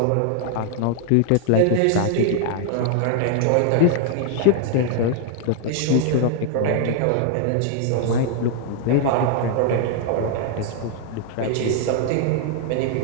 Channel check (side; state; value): both; different; correlation 0.00